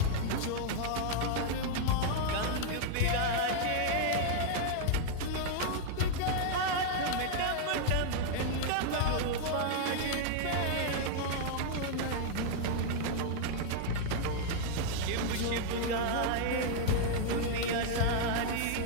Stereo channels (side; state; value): both; different; correlation -0.01